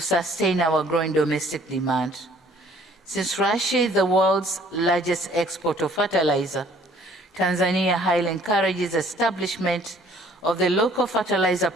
our growing domestic demand. Since Russia is the world's largest exporter of fertilizer, Tanzania highly encourages establishment of the local fertilizer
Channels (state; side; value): normal; both; correlation 0.57